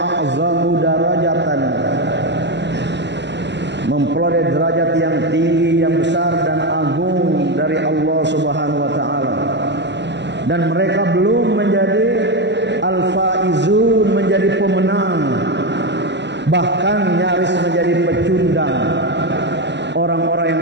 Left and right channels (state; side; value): late; left; 0.51 ms